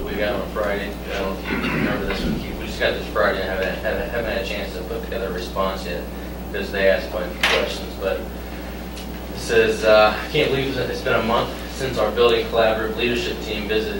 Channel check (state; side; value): identical; both; correlation 1.00